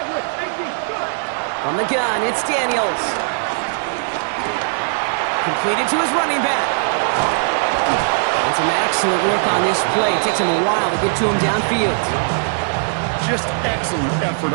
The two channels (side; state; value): left; silent; digital silence